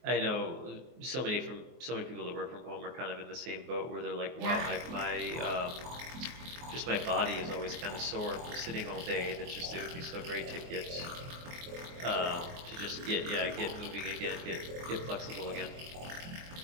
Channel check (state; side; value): late; left; 24 ms